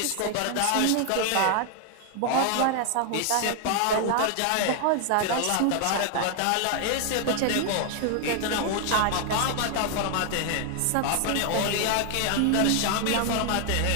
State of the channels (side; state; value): both; different; correlation 0.00